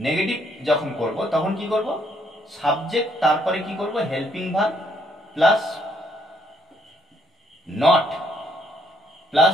যখন করব তখন কি করব, সাবজেক্ট তারপরে কি করব, helping verb plus not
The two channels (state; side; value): normal; both; correlation 0.69